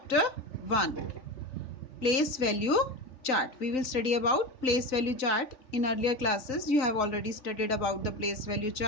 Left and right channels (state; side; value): late; right; 3.5 ms